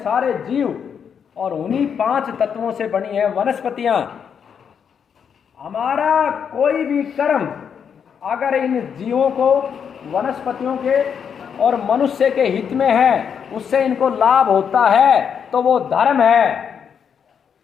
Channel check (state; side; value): quieter; right; 7.3 dB